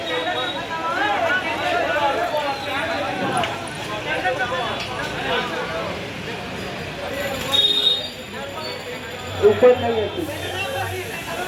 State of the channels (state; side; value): identical; both; correlation 1.00